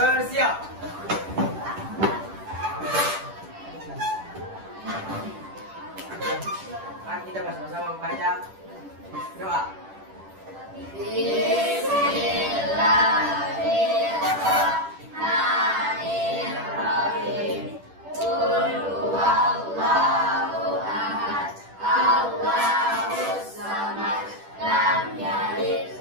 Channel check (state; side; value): late; left; 10 ms